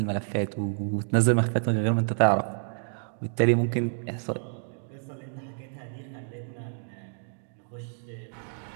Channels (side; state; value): left; silent; digital silence